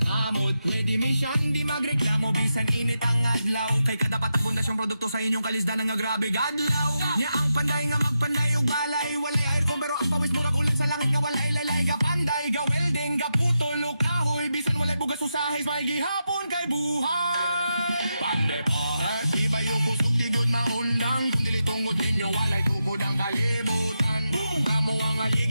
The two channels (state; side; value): inverted; both; correlation -0.87